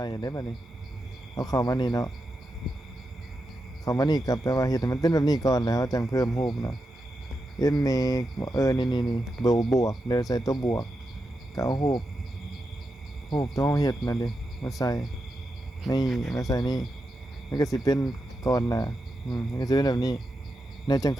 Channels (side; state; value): both; normal; correlation 0.87